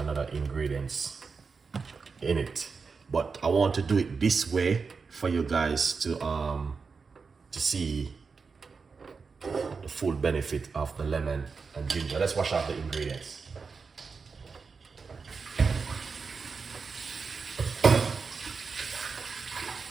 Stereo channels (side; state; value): left; quieter; 5.0 dB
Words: ingredients in it, but I want to do it this way for you guys to see the full benefit of the lemon and ginger. Let's wash out the ingredients.